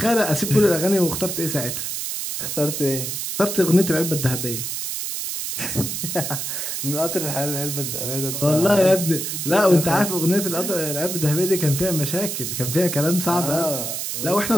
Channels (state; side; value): noise; right; hiss, 4 dB below the sound